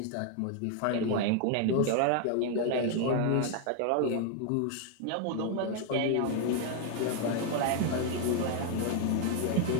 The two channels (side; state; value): both; different; correlation 0.00